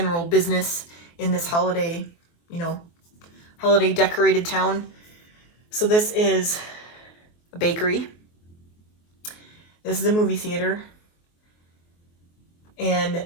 business in this holiday, you know, holiday decorated town. So this is a bakery. This is a movie theater. And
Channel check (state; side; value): late; right; 24 ms